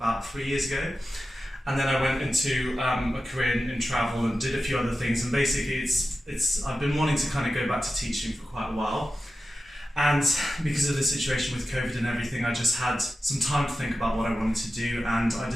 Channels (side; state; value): both; normal; correlation 0.93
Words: 3 years ago, and then I went into a career in travel and did a few other things. And basically, I've been wanting to kind of go back to teaching for quite a while, and because of the situation with COVID and everything, I just had some time to think about what I wanted to do, and I